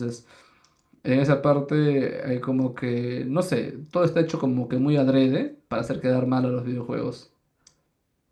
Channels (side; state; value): both; identical; correlation 1.00